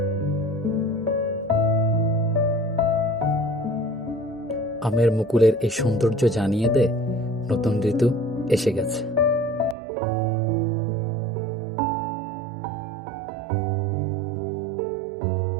আমের মুকুলের এই সৌন্দর্য জানিয়ে দেয় নতুন ঋতু এসে গেছে।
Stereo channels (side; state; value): left; drops out; at 9.8 s